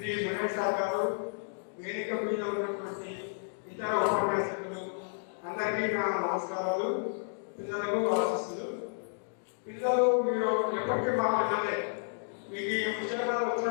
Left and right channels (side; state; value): right; silent; digital silence